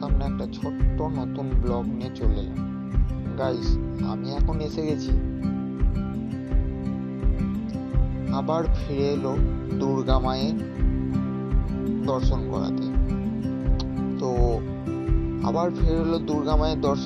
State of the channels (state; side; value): identical; both; correlation 1.00